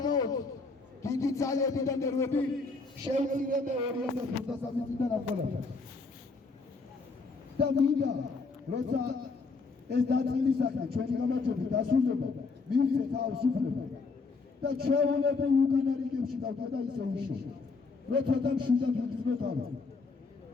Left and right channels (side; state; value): right; quieter; 4.2 dB